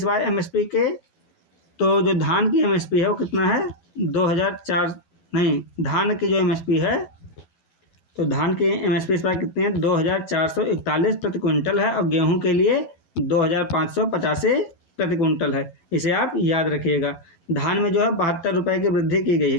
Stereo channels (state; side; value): late; right; 12 ms